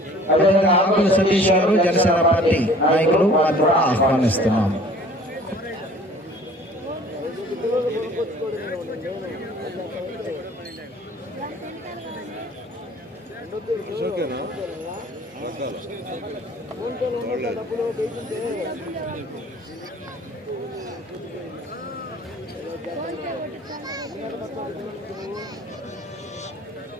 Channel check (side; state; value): both; normal; correlation 0.50